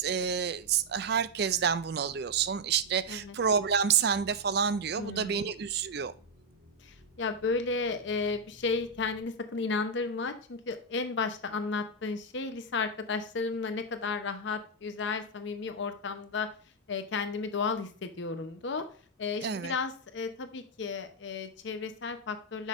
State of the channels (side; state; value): both; normal; correlation -0.01